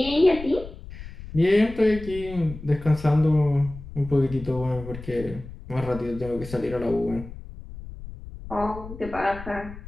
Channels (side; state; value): left; noise; rumble, 13 dB below the sound